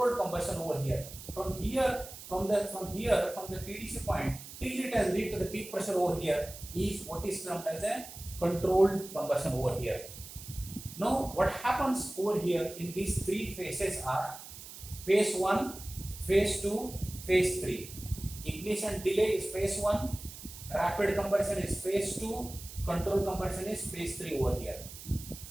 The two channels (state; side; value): noise; right; hiss, 14 dB below the sound